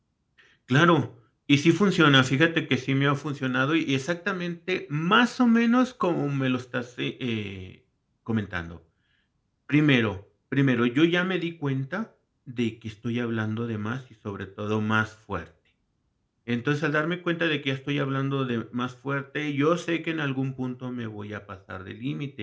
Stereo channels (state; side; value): identical; both; correlation 1.00